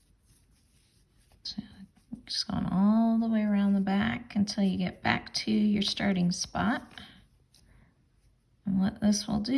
Just going all the way around the back until you get back to your starting spot. And what this will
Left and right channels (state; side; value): identical; both; correlation 1.00